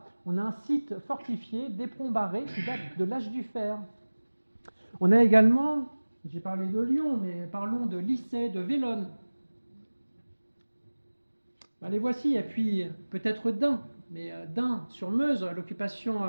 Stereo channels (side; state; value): both; inverted; correlation -1.00